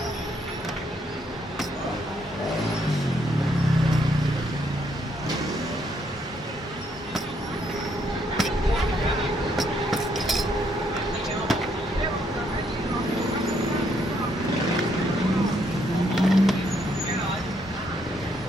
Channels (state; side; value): normal; both; correlation 0.72